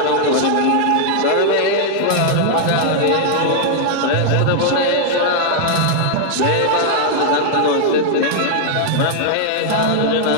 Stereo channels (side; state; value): both; different; correlation -0.01